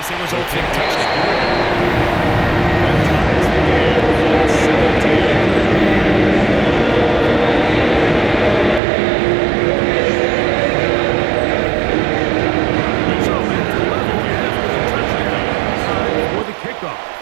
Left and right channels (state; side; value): drops out; left; at 8.8 s